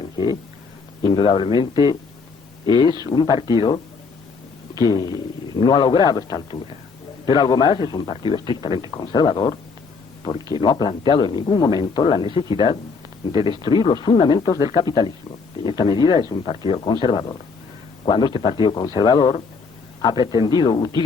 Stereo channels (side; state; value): right; quieter; 4.9 dB